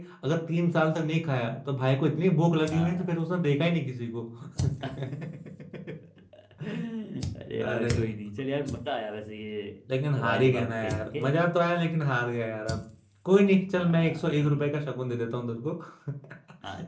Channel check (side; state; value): both; identical; correlation 1.00